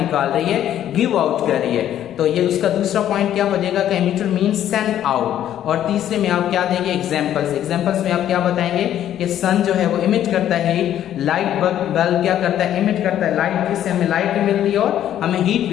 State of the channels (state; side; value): quieter; right; 11.2 dB